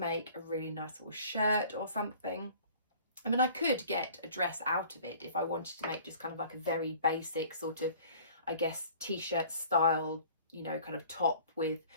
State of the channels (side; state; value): both; inverted; correlation -0.49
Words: a really nice little shirt or something. I mean, I could get a dress out of it if I wanted to make just kind of like a very basic sort of, I guess, t-shirt style, you know, kind of top with,